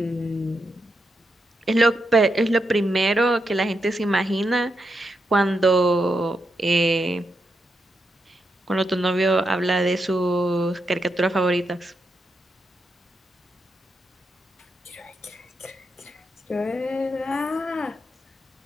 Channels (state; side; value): normal; both; correlation 0.84